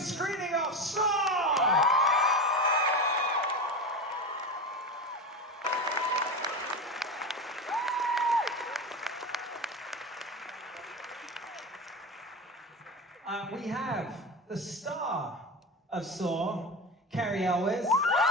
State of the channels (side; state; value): both; normal; correlation 0.22